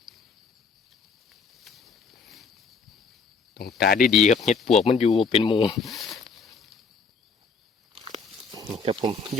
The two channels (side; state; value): right; quieter; 4.7 dB